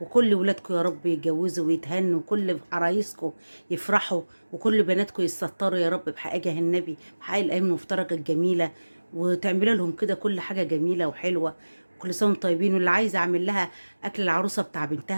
وكل ولادكم يا رب يتجوزوا ويتهنوا، وكل عرايسكم يفرحوا، وكل بناتكم يستطروا يا رب بحقيقه النبي، بحقيقه الايام المفترجه الجميله، وتعملوا لهم كده كل حاجه جميله وحلوه. كل سنه وانتم طيبين. واللي عايزه اعمل لها اكل العروسه بتاع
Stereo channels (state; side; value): inverted; both; correlation -1.00